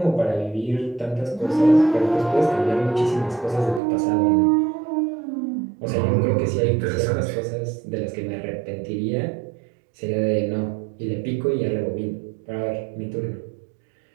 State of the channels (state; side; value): drops out; left; at 3.8 s